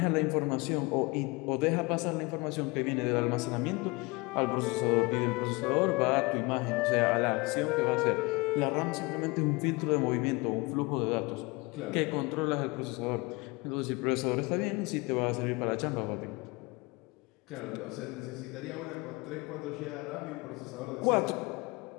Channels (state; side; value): quieter; right; 25.4 dB